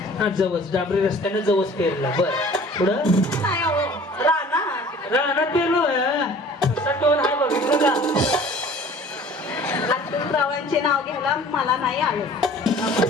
हा, जवस डांबरी रस्त्याने जवस पेरला. बर, पुढं? रानात पेरलो. कसा टोन आहे बघितलं का? रावांचे नाव घ्यायला मला नाही आलं.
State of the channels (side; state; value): both; normal; correlation 0.48